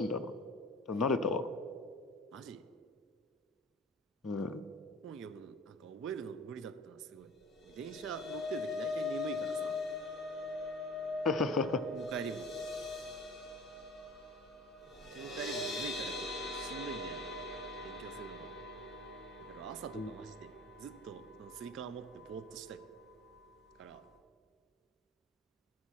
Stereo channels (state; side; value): normal; both; correlation 0.42